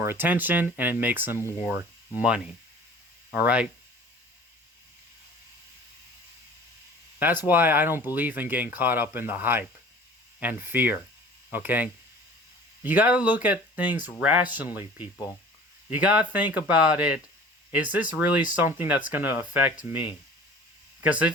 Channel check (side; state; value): both; normal; correlation 0.45